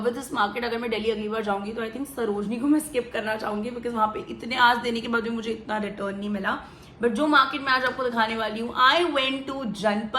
with this market. अगर मैं दिल्ली अगली बार जाऊंगी तो आई थिंक सरोजनी को मैं स्किप करना चाहूंगी बिकॉज वहां पे इतने आज देने के बाद भी मुझे इतना रिटर्न नहीं मिला। बट जो मार्केट मैं आज आपको दिखाने वाली हूँ, आई वेंट टू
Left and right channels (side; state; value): both; identical; correlation 1.00